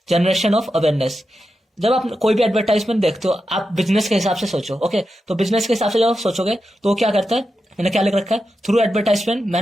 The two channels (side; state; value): both; normal; correlation 0.89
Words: जनरेशन ऑफ अवेयरनेस। जब आप कोई भी एडवर्टाइजमेंट देखते हो, आप बिजनेस के हिसाब से सोचो। ओके, तो बिजनेस के हिसाब से जब आप सोचोगे तो क्या करता है, मैंने क्या लिख रखा है, through advertisement